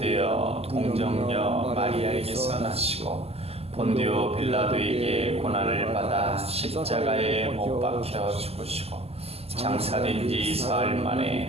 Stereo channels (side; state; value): left; late; 0.29 ms